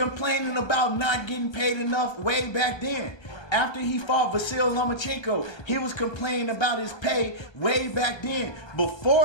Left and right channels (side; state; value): right; late; 1.3 ms